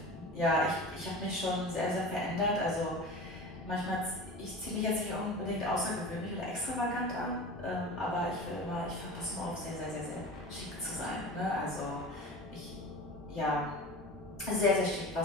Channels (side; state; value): both; normal; correlation 0.34